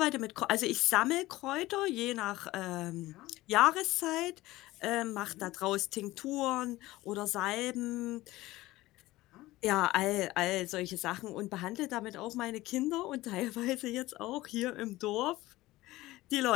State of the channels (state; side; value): quieter; right; 18.0 dB